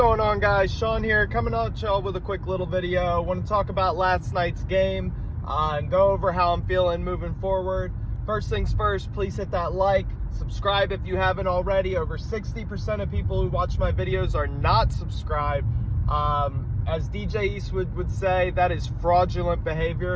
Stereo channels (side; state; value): both; identical; correlation 1.00